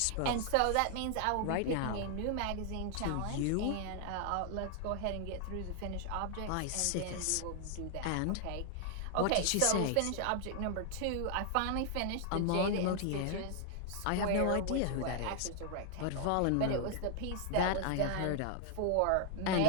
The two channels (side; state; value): both; different; correlation 0.00